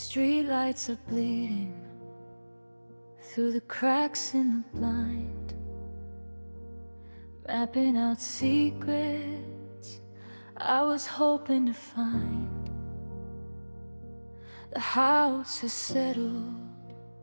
streetlights are bleeding through the cracks in the blind, mapping out secrets I was hoping to find. The house is settled,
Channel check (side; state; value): both; inverted; correlation -1.00